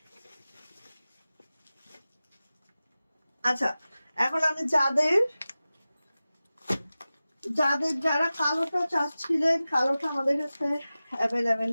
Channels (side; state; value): both; inverted; correlation -0.96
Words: আচ্ছা, এখন আমি যারা কালোটা চাচ্ছিলেন, কালোটা আমাদের কাছে অ্যাভেলেবেল